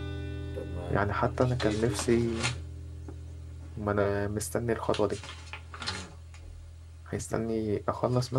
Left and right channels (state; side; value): identical; both; correlation 1.00